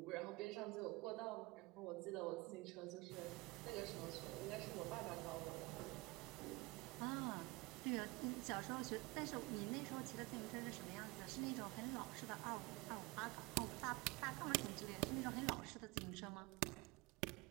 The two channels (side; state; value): left; quieter; 23.6 dB